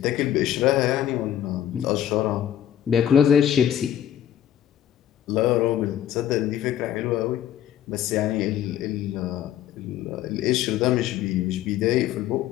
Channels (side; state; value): right; quieter; 10.9 dB